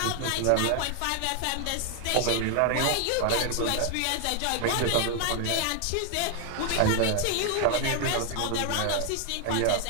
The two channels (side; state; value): both; different; correlation 0.00